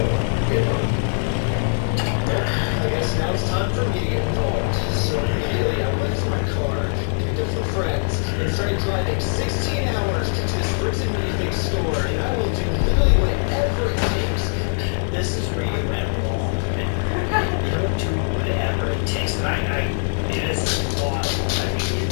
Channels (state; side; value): silent; right; 62 dB below the other